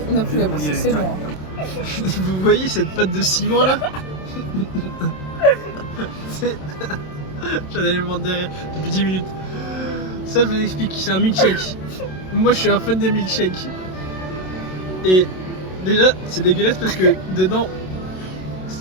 on a plus la place, On y allait c'est bon. direct. Vous voyez cette pâte de ciment là? C'est... J'en avais le ventre derrière depuis 10 minutes. Ça, je vous explique, c'est un milkshake. Moi, je suis un fan des milkshakes. Et déjà, c'est dégueulasse parce que dedans,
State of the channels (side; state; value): right; late; 27 ms